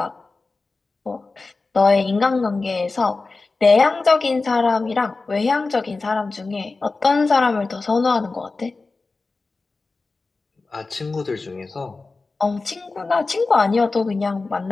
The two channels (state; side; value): quieter; right; 3.7 dB